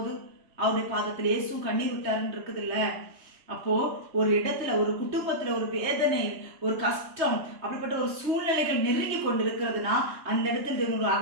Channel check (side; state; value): left; late; 3.1 ms